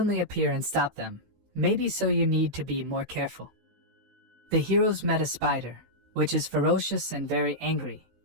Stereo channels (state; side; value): late; left; 15 ms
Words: appear and stop them. Maybe so you need to be more careful. The heroes met a spider, which is ferocious and very angry.